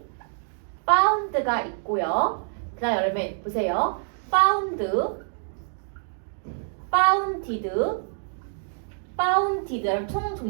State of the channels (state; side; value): silent; left; digital silence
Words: found가 있고요. 그 다음 여러분 보세요. founded 총